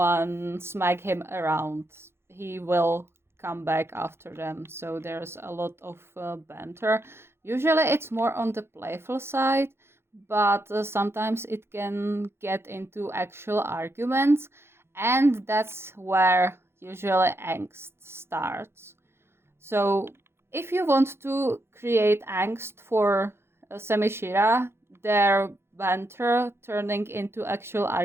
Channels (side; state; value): left; late; 0.12 ms